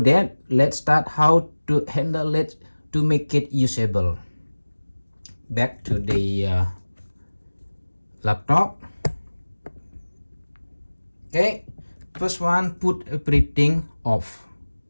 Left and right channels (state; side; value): inverted; both; correlation -1.00